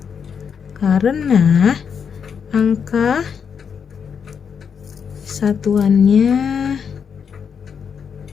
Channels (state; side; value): quieter; right; 6.9 dB